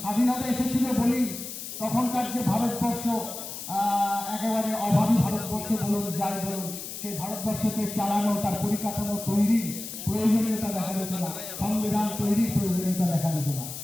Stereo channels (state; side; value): noise; left; hiss, 9 dB below the sound